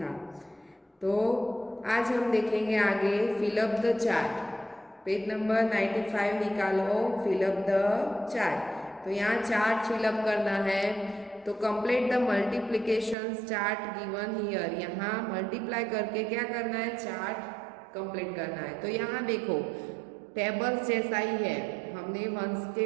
तो आज हम देखेंगे आगे fill up the chart. Page number 95 निकालो, फिलअप द चार्ट। तो यहाँ चार्ट फिलअप करना है। तो complete the multiplication chart given here. यहाँ मल्टीप्लाई करके क्या करना है, चार्ट कंप्लीट करना है। तो यहाँ देखो टेबल्स जैसा ही है। हमने 1 से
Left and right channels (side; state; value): left; drops out; at 13.2 s